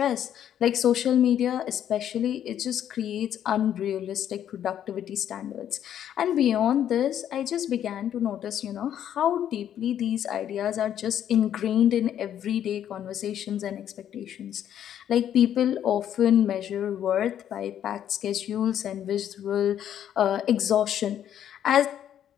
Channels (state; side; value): quieter; right; 10.2 dB